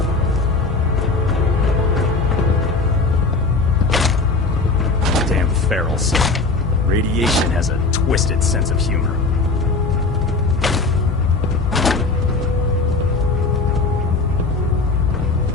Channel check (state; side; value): quieter; right; 3.7 dB